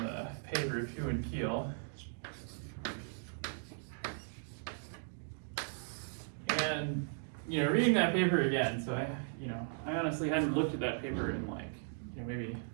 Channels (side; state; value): left; silent; digital silence